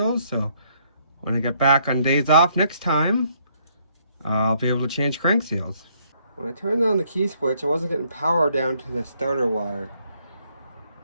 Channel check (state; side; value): inverted; both; correlation -0.68